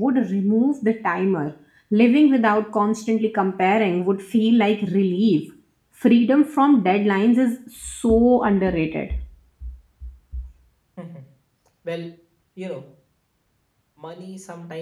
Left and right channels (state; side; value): identical; both; correlation 1.00